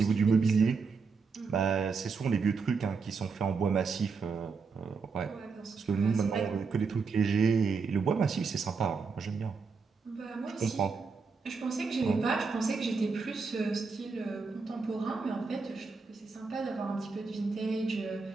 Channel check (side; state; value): left; quieter; 4.9 dB